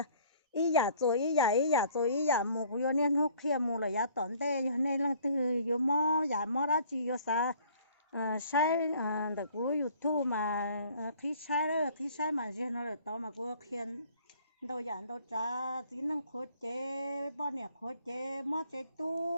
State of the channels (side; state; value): both; inverted; correlation -0.56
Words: ý giả mua cú yêu nên hút kia mua là giá tổn tệ cho nên là từ yêu mò giả mò đó chỉ yêu sa sai được cú yêu thu mà khi sai mà chứ nó là to mà cú khiên đâu giảm đâu trả chỉ năng khối chế bao nhiêu khối chế mò chế